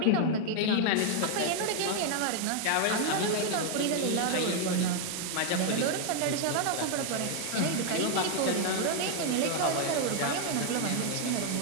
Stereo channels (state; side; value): different; both; correlation 0.00